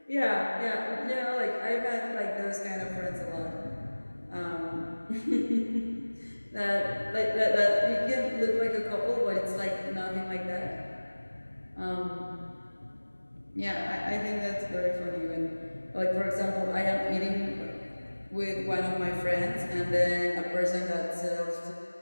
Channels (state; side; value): inverted; both; correlation -1.00